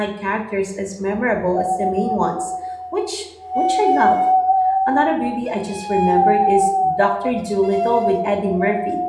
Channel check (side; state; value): both; identical; correlation 1.00